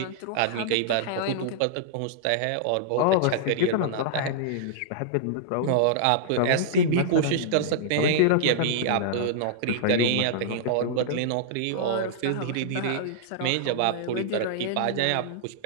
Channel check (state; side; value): different; both; correlation -0.02